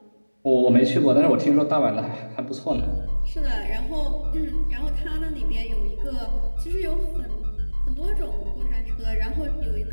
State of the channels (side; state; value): both; inverted; correlation -1.00